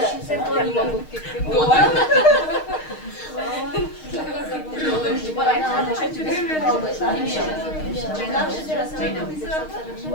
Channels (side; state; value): right; late; 6.4 ms